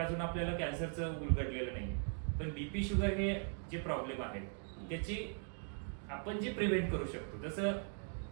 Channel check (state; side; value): silent; left; 51 dB below the other